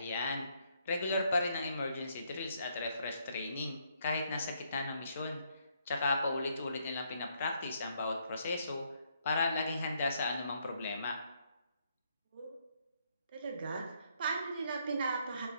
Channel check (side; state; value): both; inverted; correlation -0.72